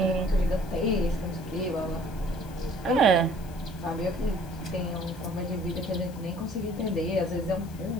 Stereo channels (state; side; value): noise; left; hiss, 22 dB below the sound